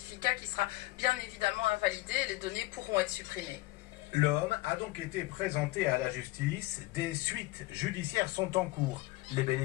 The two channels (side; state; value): right; quieter; 19.9 dB